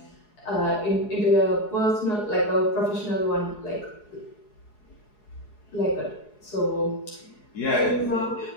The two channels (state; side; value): late; right; 4.8 ms